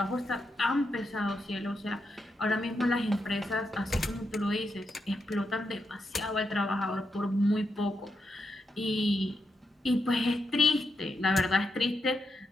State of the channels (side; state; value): both; normal; correlation 0.85